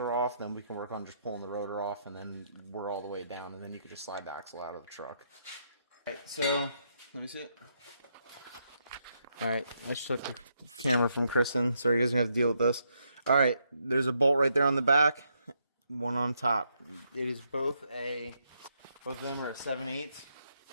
off, then we can work on just pulling the rotor off, and then we're all the way down, and then you can just slide the axle out of the truck. Alright, so, let me see it. Alright, I just took the camera from Kristen, so you guys are going to have to deal with this. Alright, there's a bolt right there on the back, one on top. It is both of them are a 7/8.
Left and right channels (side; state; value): both; inverted; correlation -0.78